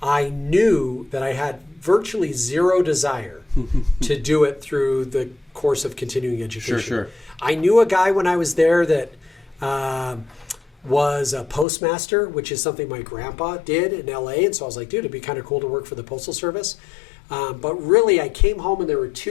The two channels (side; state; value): right; drops out; at 11.7 s